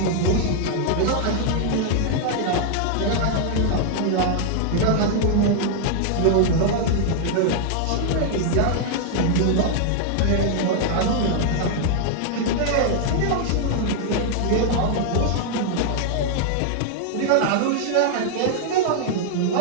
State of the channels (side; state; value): both; different; correlation -0.01